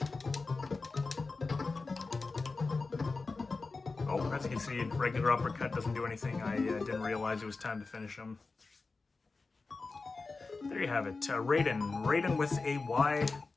Oh, as you can see, regular uppercut doesn't do anything. I didn't realize it was time to finish him. There you have it. Raiden with a Y.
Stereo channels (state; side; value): quieter; right; 3.9 dB